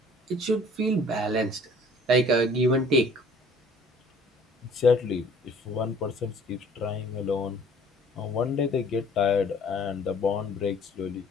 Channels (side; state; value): both; normal; correlation 0.53